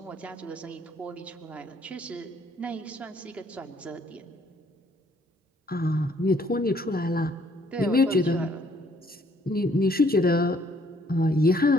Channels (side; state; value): both; normal; correlation 0.64